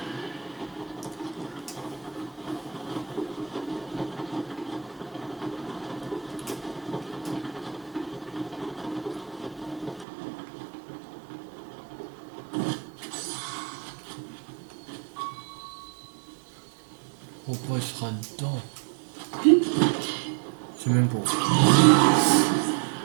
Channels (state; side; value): drops out; left; at 10.1 s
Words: Pourquoi il sera dedans? C'est même pas.